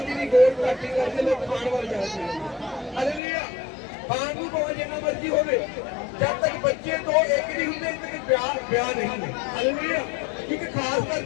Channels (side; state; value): right; drops out; at 3.2 s